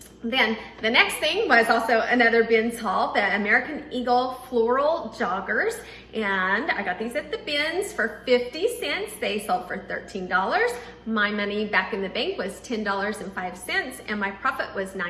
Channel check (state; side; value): identical; both; correlation 1.00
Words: Then the next thing was also another bins haul, the American Eagle Floral Joggers. And I got these at the bins for 50 cents. They sold for $13. My money back in the bank was $10.05 and my profit was